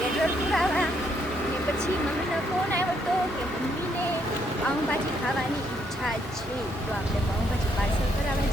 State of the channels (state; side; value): normal; both; correlation 0.73